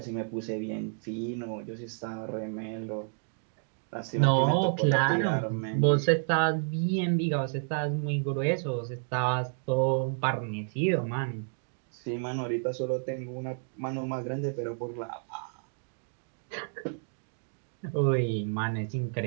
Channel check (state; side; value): silent; left; digital silence